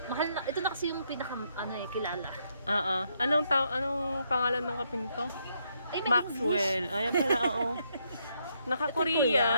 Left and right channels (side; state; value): both; inverted; correlation -0.75